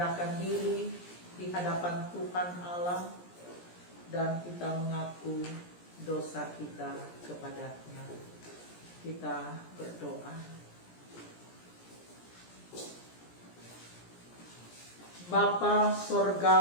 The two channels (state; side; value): late; right; 17 ms